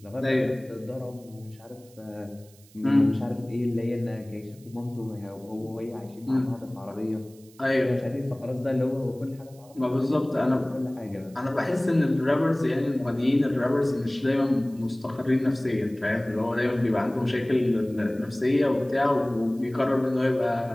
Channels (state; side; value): noise; right; hiss, 27 dB below the sound